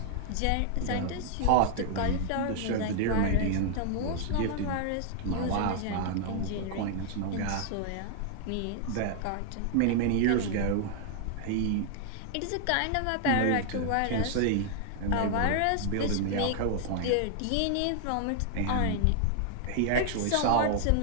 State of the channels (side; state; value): both; different; correlation 0.00